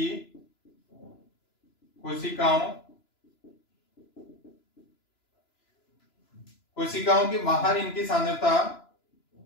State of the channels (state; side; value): late; right; 3.0 ms